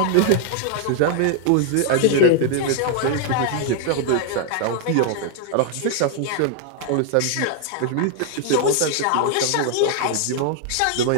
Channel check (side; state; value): both; different; correlation 0.00